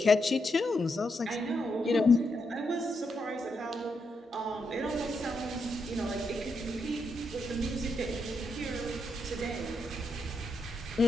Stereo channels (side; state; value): both; normal; correlation 0.82